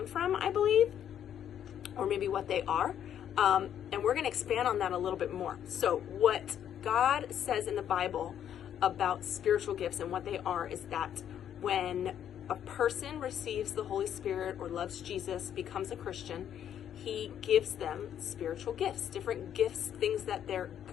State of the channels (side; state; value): right; quieter; 9.8 dB